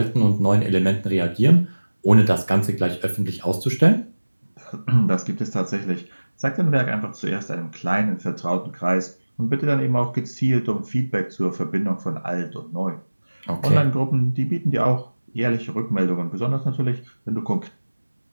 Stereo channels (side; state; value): both; inverted; correlation -1.00